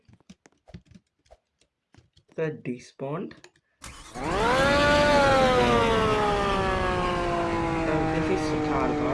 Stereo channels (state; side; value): identical; both; correlation 1.00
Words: The despawned. This is the car,